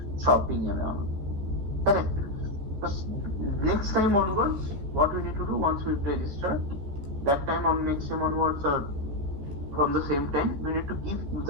shopping and all. Correct. Next time onwards, what we need to do once we register, that time on next time onwards or from the same time, we need to give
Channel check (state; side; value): late; left; 14 ms